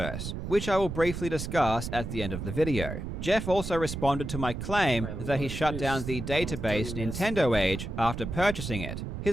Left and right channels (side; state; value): right; noise; rumble, 6 dB below the sound